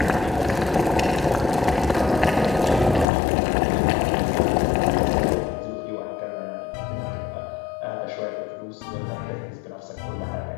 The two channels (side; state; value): right; drops out; at 3.1 s